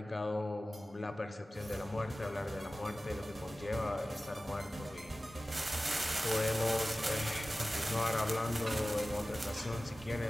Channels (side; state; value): both; normal; correlation 0.96